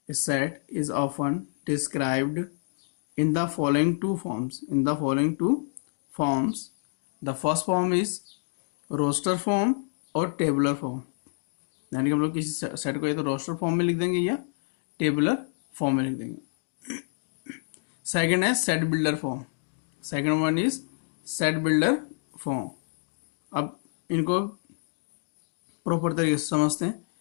A set is often described in the following two forms. The first form is roster form और tabular form. यानी कि हम लोग किसी सेट को या तो रोस्टर फॉर्म में लिख देंगे या टेबुलर फॉर्म में लिख देंगे। सेकंड है set builder form. Second one is set builder form. अब इनको प्रॉपर तरीके से समझते हैं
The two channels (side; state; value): right; silent; digital silence